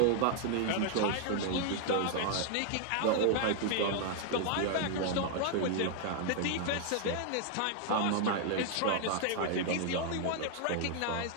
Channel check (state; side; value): different; both; correlation 0.00